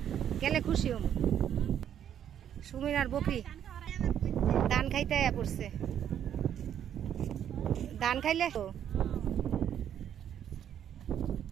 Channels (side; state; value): left; quieter; 9.7 dB